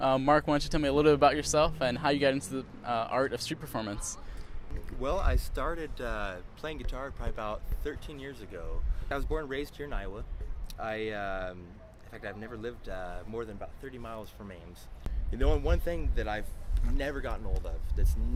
Mark, why don't you tell me a little bit about yourself and how you got into the art of street performance? Well, I started playing guitar probably about 13 years ago. I was born and raised here in Iowa. In fact, I've never lived more than about 30 miles from Ames. The only one thing that I've never gotten old of, that's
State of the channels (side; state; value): both; identical; correlation 1.00